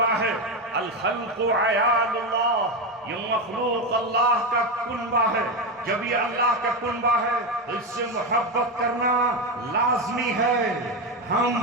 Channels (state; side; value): normal; both; correlation 0.13